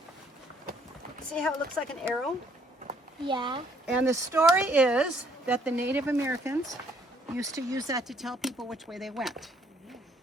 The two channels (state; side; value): normal; both; correlation 0.66